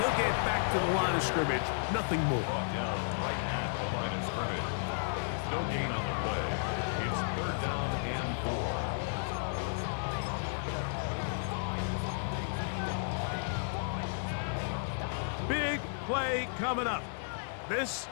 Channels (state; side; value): silent; right; digital silence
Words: get back to the line of scrimmage. Nothing more. Brought down right at the line of scrimmage. No gain on the play. It's 3rd down and 4. play coming up. This